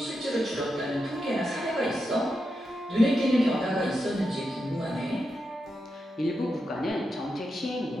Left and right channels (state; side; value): normal; both; correlation 0.87